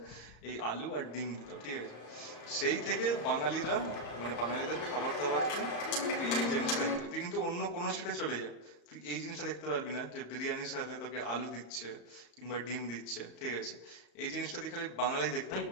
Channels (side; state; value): right; late; 35 ms